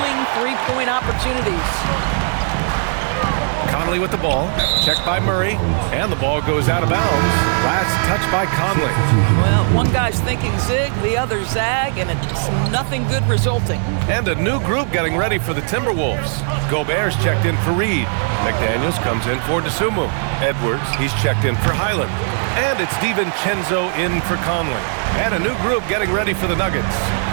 three-point opportunities. Conley with the ball. Checked by Murray. And the ball goes out of bounds. Last touch by Conley. Well, one guy's thinking zig, the other zag, and it's nothing good resulting. And a new group getting ready for the Timberwolves. Gobert's checked in for Reed. McDaniels comes in for Tsumu. Edwards, he's checked in for Highland. And it's DiVincenzo in for Conley. And a new group getting ready for the Nuggets.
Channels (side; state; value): left; silent; 67 dB below the other